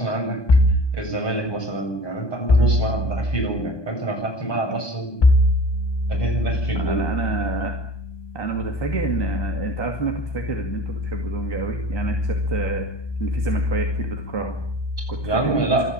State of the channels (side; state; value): right; late; 1.2 ms